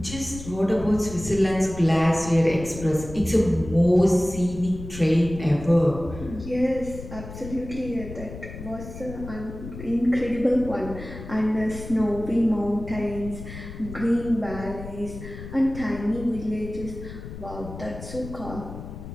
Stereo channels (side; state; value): left; noise; rumble, 11 dB below the sound